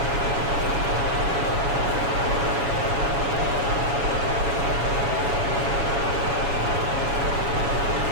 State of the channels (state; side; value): late; left; 7.2 ms